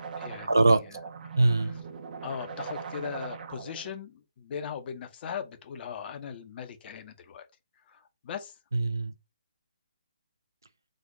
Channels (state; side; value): inverted; both; correlation -0.89